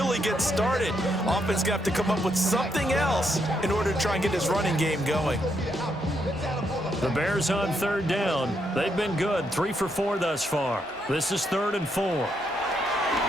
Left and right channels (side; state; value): both; normal; correlation 0.78